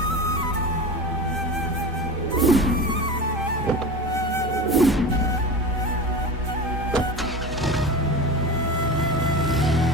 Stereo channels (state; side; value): normal; both; correlation 0.29